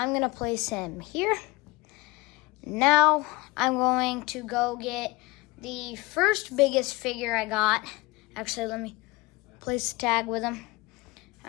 going to place him here. Now I'm going to go get the first biggest figure I got. Actually, let me place the tag with him.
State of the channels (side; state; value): right; quieter; 23.4 dB